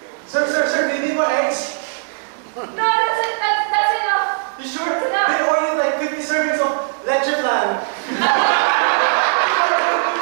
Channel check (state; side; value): silent; left; digital silence